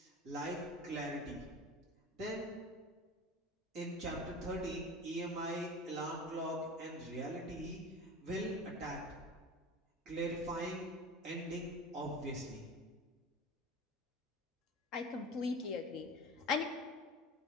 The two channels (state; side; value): normal; both; correlation 0.34